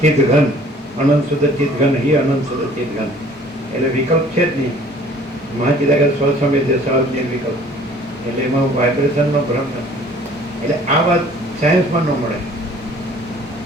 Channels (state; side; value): normal; both; correlation 0.53